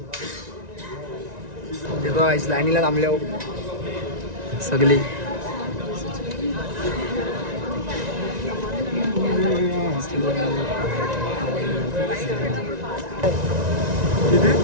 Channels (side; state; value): left; late; 1.9 ms